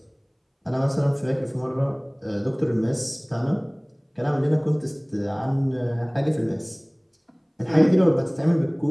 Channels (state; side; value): identical; both; correlation 1.00